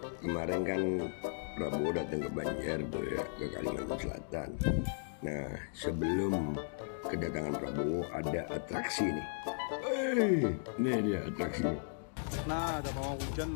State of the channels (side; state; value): right; silent; digital silence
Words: kemarin kan Prabowo datang ke Banjar tuh ya, ke Kalimantan Selatan. Nah, sebelum kedatangan Prabowo ada atraksi nih. Nih dia atraksi. Nah, ada pawang hujan